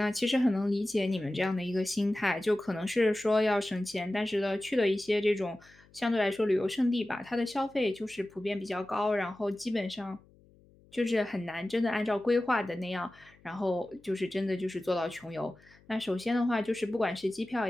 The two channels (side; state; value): left; noise; hum, 28 dB below the sound